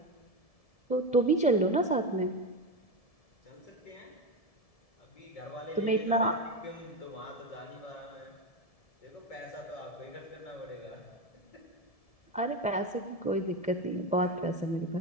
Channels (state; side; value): late; right; 1.7 ms